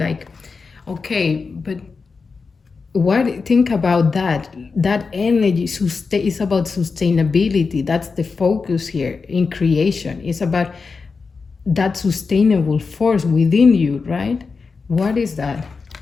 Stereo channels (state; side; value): quieter; right; 4.7 dB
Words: okay, but what, think about that energy is about sustainability. That's the focus here in creation. It's about that sustainable force within you, right? What is that?